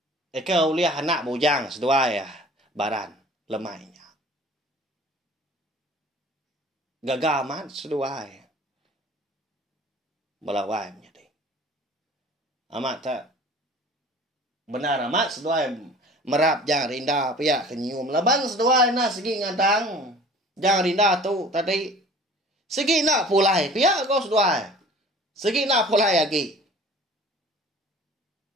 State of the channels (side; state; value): both; normal; correlation 0.46